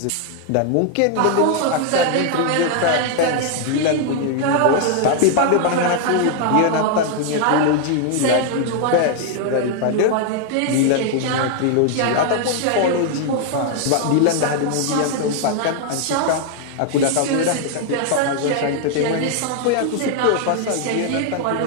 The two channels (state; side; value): different; both; correlation 0.00